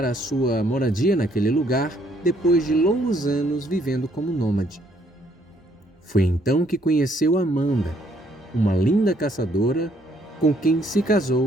a sua moradia naquele lugar depois de longos anos vivendo como nômade. Foi então que conheceu Amanda, uma linda caçadora com quem se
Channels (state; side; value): normal; both; correlation 0.68